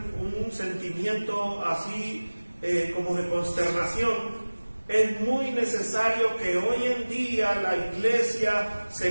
un sentimiento así como de consternación, es muy necesario que hoy en día la iglesia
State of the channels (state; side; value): inverted; both; correlation -1.00